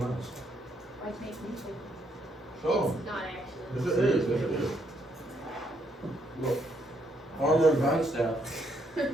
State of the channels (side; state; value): both; normal; correlation 0.74